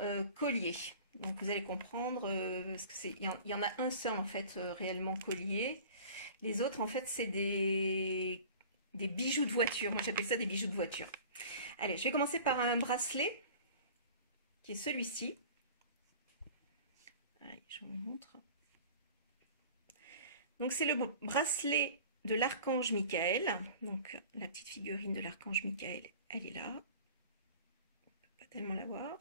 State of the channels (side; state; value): both; inverted; correlation -0.43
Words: collier. Donc vous allez comprendre, parce que il y en a un seul en fait réellement collier. Les autres en fait c'est des bijoux de voiture. Moi j'appelle ça des bijoux de voiture. Allez, je vais commencer par un bracelet qui est celui-ci. Allez, je vous montre. Donc c'est le bracelet de l'archange Michael. Donc la petite figurine de l'archange Michael, elle est là. On peut pas tellement la voir.